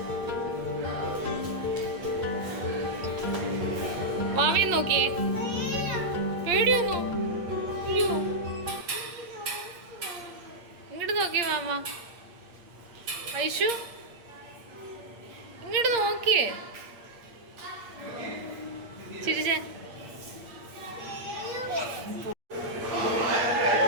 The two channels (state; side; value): late; left; 8.6 ms